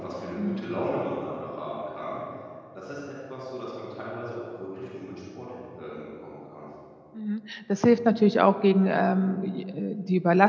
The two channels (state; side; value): identical; both; correlation 1.00